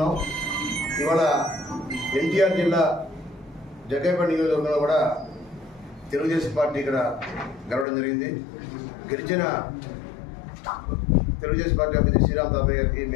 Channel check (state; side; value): drops out; right; at 7.9 s